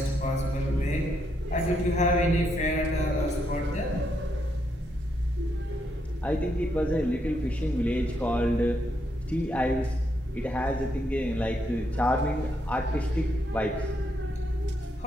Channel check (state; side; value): normal; both; correlation 0.78